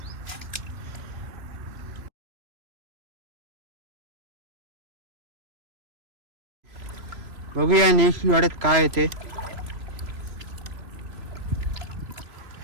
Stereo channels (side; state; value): left; late; 3.0 ms